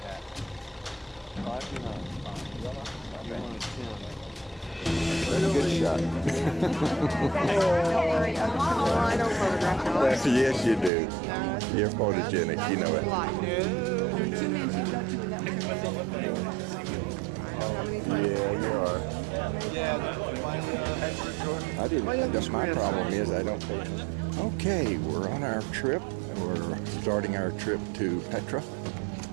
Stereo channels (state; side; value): drops out; left; at 10.9 s